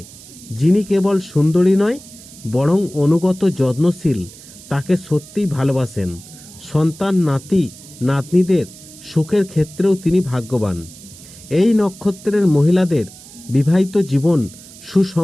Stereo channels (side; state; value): right; noise; hiss, 19 dB below the sound